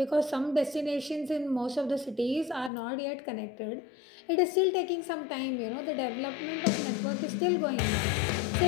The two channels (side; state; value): right; drops out; at 2.7 s